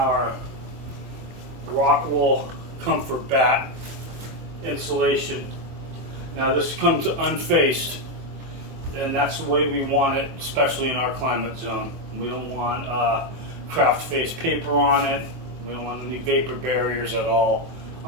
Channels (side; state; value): left; late; 24 ms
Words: rock wool comfort bat insulation. Now this comes unfaced, and that's the way we want it, especially in our climate zone. We don't want craft face paper on it. We don't want any vapor barriers at all